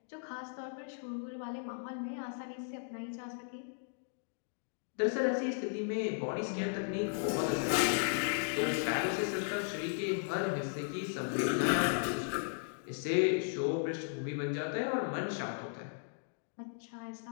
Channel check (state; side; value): silent; right; digital silence